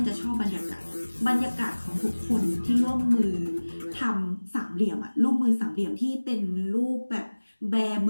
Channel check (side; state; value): both; inverted; correlation -1.00